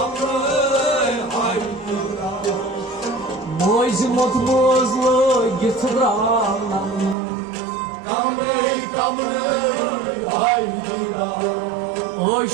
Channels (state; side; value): drops out; left; at 7.2 s